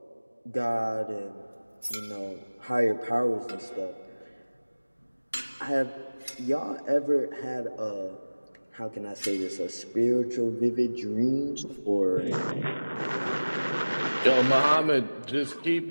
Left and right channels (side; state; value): both; inverted; correlation -1.00